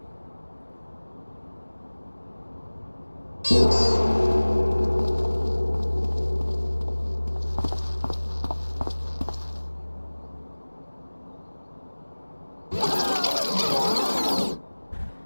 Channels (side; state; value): both; inverted; correlation -1.00